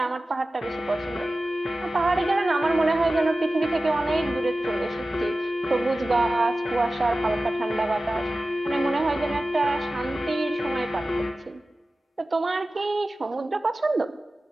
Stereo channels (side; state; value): both; normal; correlation 0.95